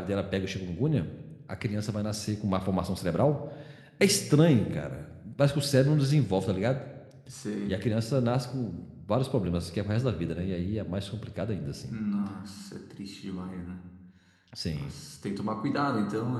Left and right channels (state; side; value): identical; both; correlation 1.00